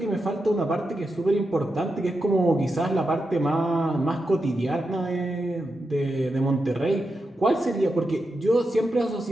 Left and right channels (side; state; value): both; normal; correlation 0.88